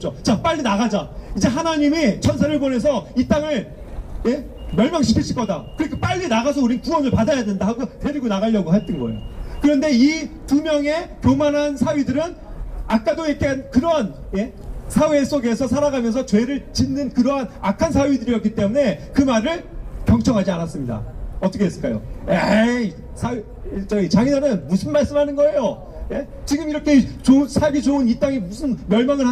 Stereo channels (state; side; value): identical; both; correlation 1.00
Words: 자, 빨리 나가자. 이제 하나님이 천사를 보내서 이 땅을 멸망시키실 거다. 그러니까 빨리 나가서 우린 구원을 받아야 된다 하고 데리고 나가려고 했던 거예요. 그런데 이 2명의 교만한 사위들은 아까도 얘기한 그런 사회 속에서 살아가면서 죄를 짓는 그러한 악한 사위들이었기 때문에 그 말을 경청하지 않았습니다. 어떻게 했을까요? 에이, 자기네는 무슨 말씀하는 거예요? 예? 지금 이렇게 살기 좋은 이 땅이 무슨 멸망을